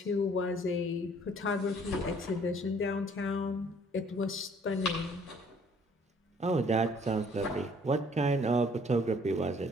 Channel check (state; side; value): normal; both; correlation 0.59